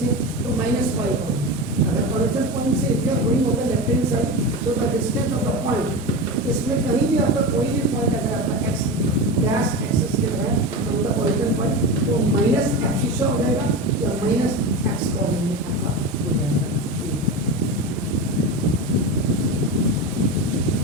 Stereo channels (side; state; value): both; normal; correlation 0.23